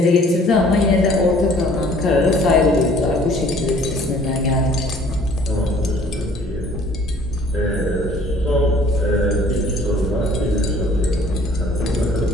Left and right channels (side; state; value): both; normal; correlation 0.55